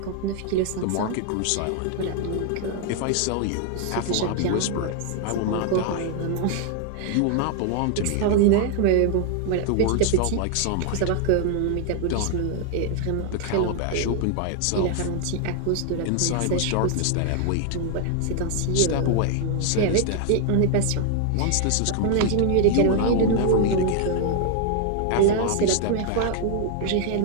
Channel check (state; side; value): different; both; correlation 0.00